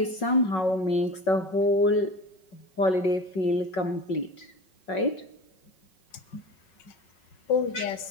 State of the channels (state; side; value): late; right; 5.4 ms